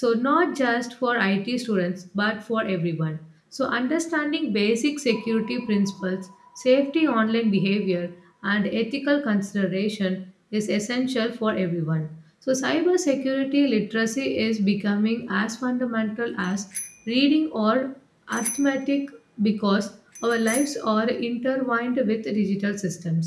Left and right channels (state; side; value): identical; both; correlation 1.00